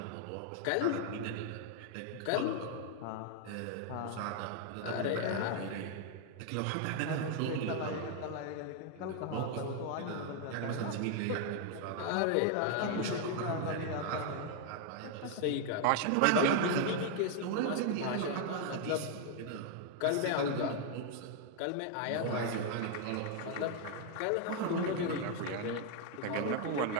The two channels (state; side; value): different; both; correlation 0.00